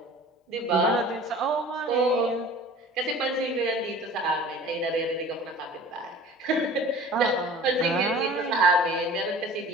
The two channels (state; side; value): normal; both; correlation 0.44